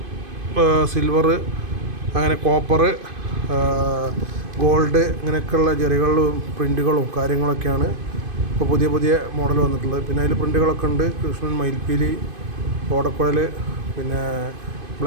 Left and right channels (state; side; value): late; left; 2.5 ms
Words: സിൽവർ, അങ്ങനെ കോപ്പർ, ഗോൾഡ്, ഇങ്ങനെയൊക്കെയുള്ള ജെറികളും പ്രിൻറ്റുകളും കാര്യങ്ങളൊക്കെയാണ് ഇപ്പോൾ പുതിയ മോഡൽ വന്നിട്ടുള്ളത്. പിന്നെ അതിൽ പ്രിൻറ്റുകളൊക്കെ ഉണ്ട്. കൃഷ്ണൻ, മയിൽപ്പീലി, ഓടക്കുഴൽ, പിന്നെ